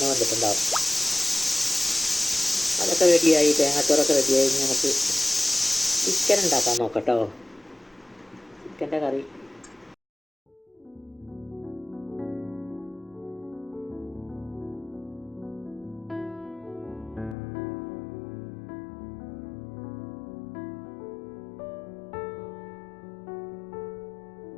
വന്നിട്ടുണ്ടാവും. അതൊക്കെ റെഡിയായി, തേങ്ങാച്ചോറൊക്കെ റെഡിയായി. നമുക്ക് ചിക്കൻ ഉണ്ടാക്കാൻ നോക്കാം കേട്ടോ. ചിക്കൻ്റെ കറി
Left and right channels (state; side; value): drops out; right; at 17.4 s